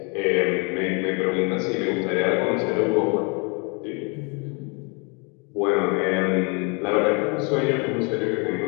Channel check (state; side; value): quieter; right; 33.2 dB